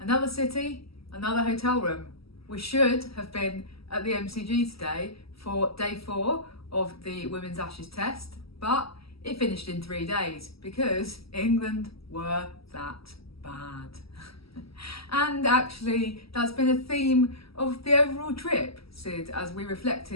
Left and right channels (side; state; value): right; late; 0.76 ms